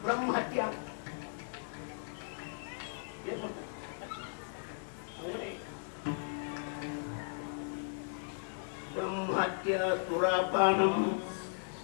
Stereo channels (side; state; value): right; silent; digital silence